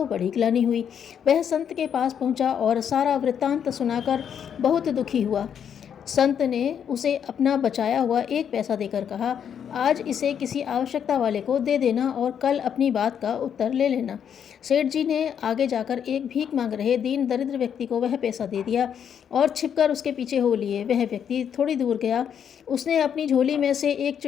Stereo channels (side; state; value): right; quieter; 8.3 dB